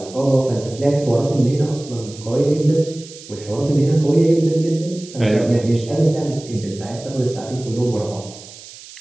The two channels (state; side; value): noise; right; hiss, 17 dB below the sound